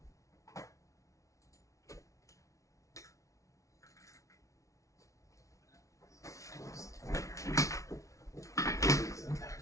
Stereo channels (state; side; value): late; right; 0.15 ms